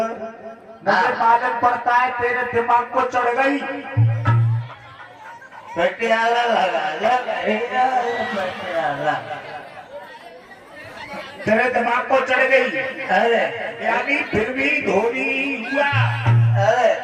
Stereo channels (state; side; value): identical; both; correlation 1.00